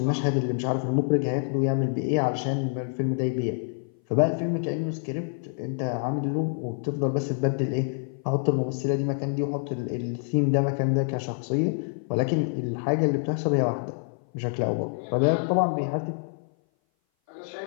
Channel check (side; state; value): right; silent; 57 dB below the other